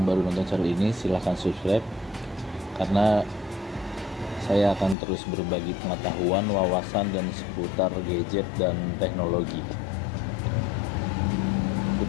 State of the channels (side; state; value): right; drops out; at 5.0 s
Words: baru nonton channel ini, silahkan subscribe, karena saya akan terus berbagi pengetahuan, wawasan, dan seputar gadget dan teknologi.